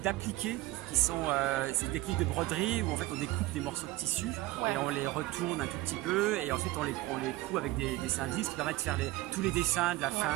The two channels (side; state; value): left; quieter; 18.3 dB